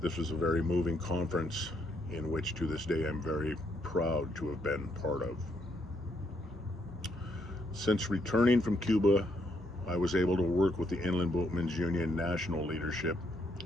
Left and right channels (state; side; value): normal; both; correlation 0.75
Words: This was a very moving conference in which to this day I'm very proud to have been part of. Since returning from Cuba, I was able to work with the Inlandboatmen's Union national leadership